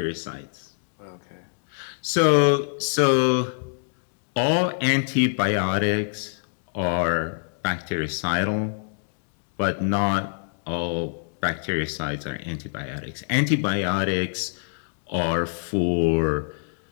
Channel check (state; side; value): silent; right; digital silence